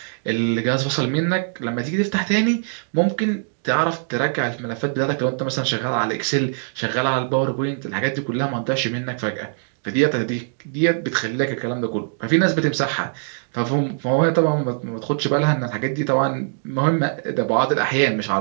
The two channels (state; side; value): silent; left; digital silence